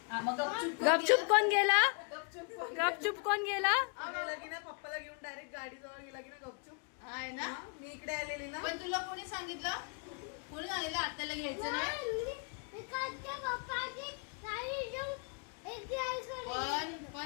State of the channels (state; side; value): quieter; right; 39.2 dB